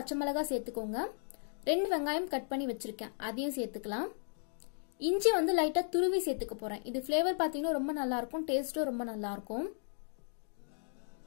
மிளகாய் சேர்த்துக்கோங்க. 2 வெங்காயம் கட் பண்ணி வச்சிருக்கேன், அதையும் சேர்த்துக்கலாம். இஞ்சி வந்து லைட்டா துருவி சேர்த்துக்க போறேன். இது ஃபிளேவர் பாத்தீங்கன்னா ரொம்ப நல்லா இருக்கும், டேஸ்டும் ரொம்ப நல்லா இருக்கும்.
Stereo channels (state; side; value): silent; right; 54 dB below the other